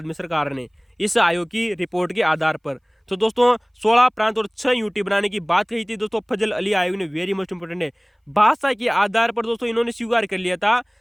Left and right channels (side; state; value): both; identical; correlation 1.00